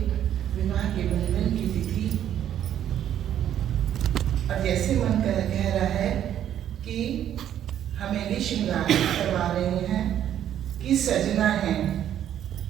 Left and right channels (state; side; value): quieter; left; 10.6 dB